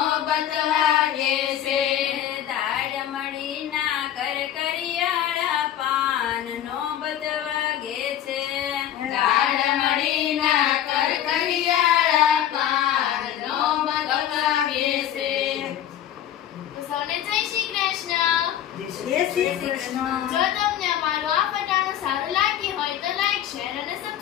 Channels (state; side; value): quieter; right; 11.1 dB